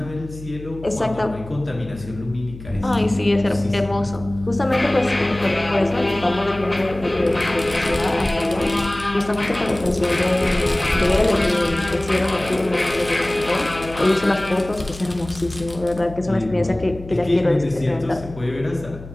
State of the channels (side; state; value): left; noise; hum, 15 dB below the sound